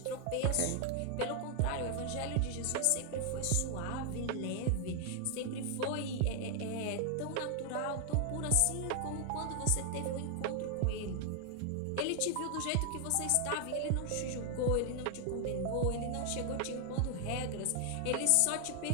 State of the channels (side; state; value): both; different; correlation 0.00